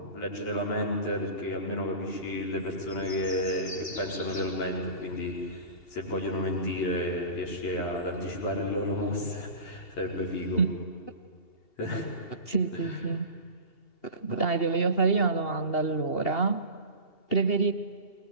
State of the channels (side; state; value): right; late; 2.8 ms